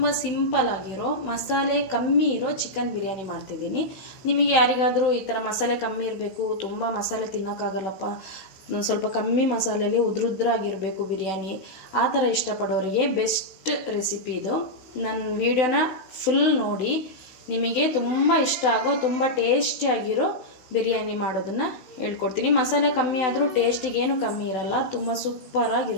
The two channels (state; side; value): late; right; 16 ms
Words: simple ಆಗಿರೋ ಮಸಾಲೆ ಕಮ್ಮಿ ಇರೋ ಚಿಕನ್ ಬಿರಿಯಾನಿ ಮಾಡ್ತಿದ್ದೀನಿ. ನಿಮಗೆ ಯಾರಿಗಾದರೂ ಈ ಥರ ಮಸಾಲೆ ಕಮ್ಮಿ ಇರಬೇಕು, ತುಂಬ ಮಸಾಲೆ ತಿನ್ನೋಕ್ಕಾಗಲ್ಲಪ್ಪ, ಸ್ವಲ್ಪ ಕಮ್ಮಿ ಮಸಾಲೆಯಲ್ಲಿ ಉದ್ರುದ್ರಾಗಿರಬೇಕು ಬಿರಿಯಾನಿ, ಆ ಥರ ಇಷ್ಟಪಡೋರಿಗೆ ಬೆಸ್ಟ್ ರೆಸಿಪಿ ಇದು. ನನ್ನ ವಿಡಿಯೋನ ಫುಲ್ ನೋಡಿ, ನಿಮಗೆ ತುಂಬ ಇಷ್ಟ ಆಗೋ ತುಂಬ ಟೇಸ್ಟಿಯಾಗಿರೋ ಬಿರಿಯಾನಿ ಮಾಡೋದನ್ನು ಹೇಳ್ಕೊಡ್ತೀನಿ. ಮಸಾಲೆ ಕಮ್ಮಿ ಆದರೂ ಟೇಸ್ಟಿಗೆ ಏನು ಕಮ್ಮಿ ಇರಲ್ಲ, ತುಂಬ